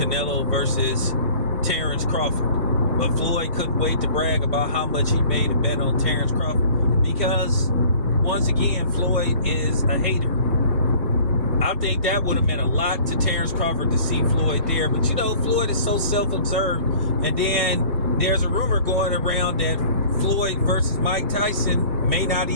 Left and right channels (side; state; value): both; inverted; correlation -0.49